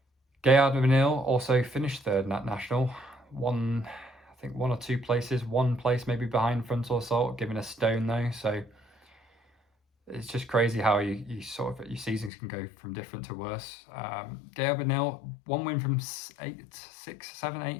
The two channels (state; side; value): drops out; right; at 12.3 s